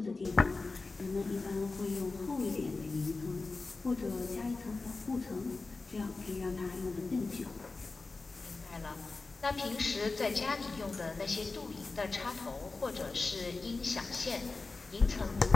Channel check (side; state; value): right; quieter; 3.8 dB